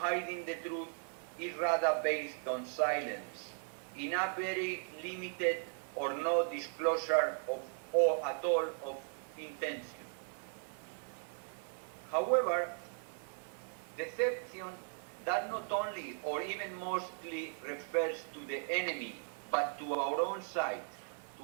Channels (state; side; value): silent; left; 53 dB below the other